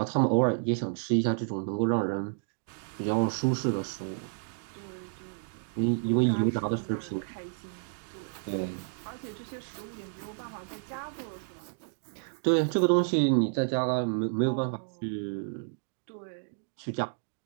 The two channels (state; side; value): silent; left; digital silence